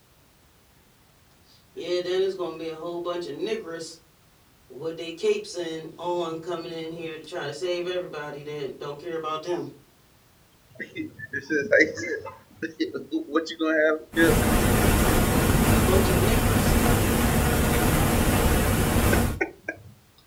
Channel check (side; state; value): both; identical; correlation 1.00